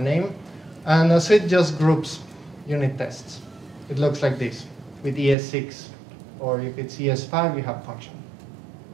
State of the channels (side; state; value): left; drops out; at 5.4 s